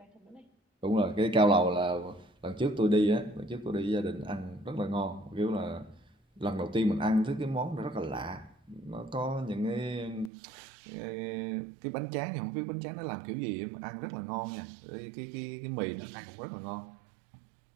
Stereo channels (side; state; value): left; drops out; at 10.3 s